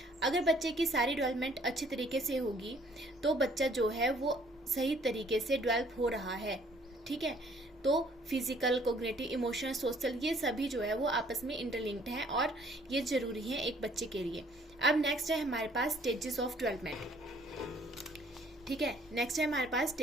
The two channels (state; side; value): normal; both; correlation 0.60